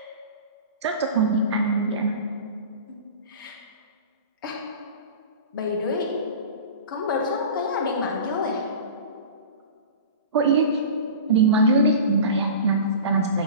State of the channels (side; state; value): both; inverted; correlation -0.35